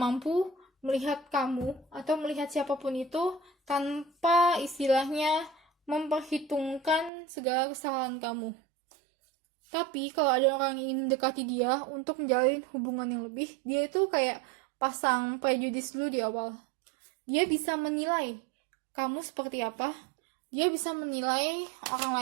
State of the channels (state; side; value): drops out; left; at 7.1 s